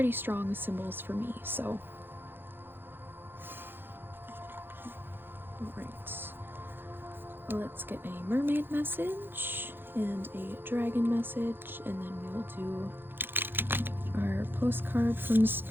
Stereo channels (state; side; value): late; left; 0.10 ms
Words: strong symbols for me, so. Alright. Let's get a mermaid message and a dragon message, and then we'll do our postcard from